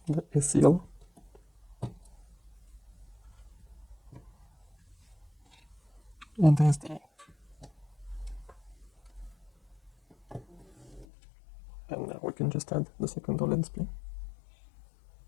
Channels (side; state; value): right; drops out; at 11.1 s